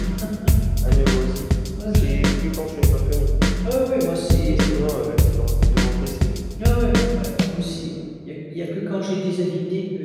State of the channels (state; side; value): identical; both; correlation 1.00